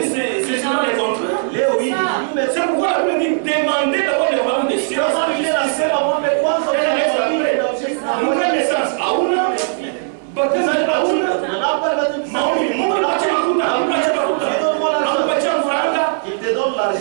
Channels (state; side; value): silent; left; 61 dB below the other